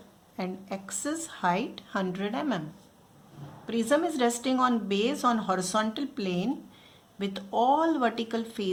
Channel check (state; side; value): identical; both; correlation 1.00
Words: and axis height 100 mm. Prism is resting on base on horizontal plane with all vertical